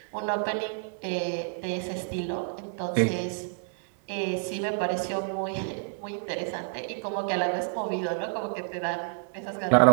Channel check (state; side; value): silent; left; 58 dB below the other